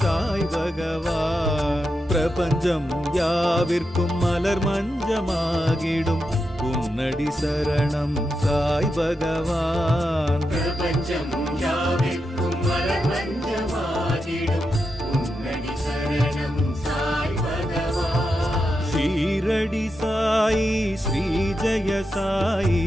சாய் பகவான் பிரபஞ்சம் யாவிற்கும் மலர் மஞ்சமாகிடும் உன்னடி சரணம் சாய் பகவான். பிரபஞ்சம் யாவிற்கும் மலர் மஞ்சமாகிடும் உன்னடி சரணம் சாய் பகவான். ஷீரடி சாயி ஸ்ரீ ஜெய சாயி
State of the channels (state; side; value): normal; both; correlation 0.87